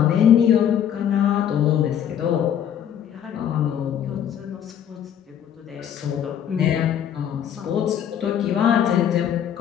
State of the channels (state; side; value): quieter; right; 9.5 dB